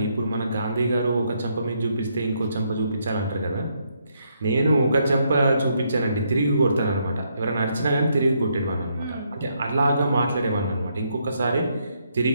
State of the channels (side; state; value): both; inverted; correlation -0.75